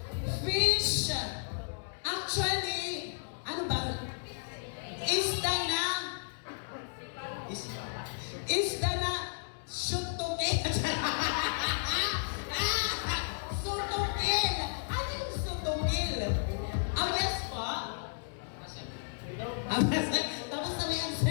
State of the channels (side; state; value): right; silent; digital silence